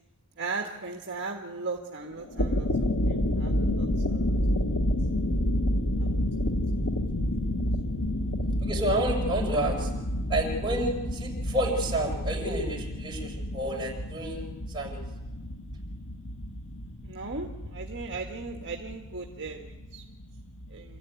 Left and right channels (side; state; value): both; normal; correlation 0.55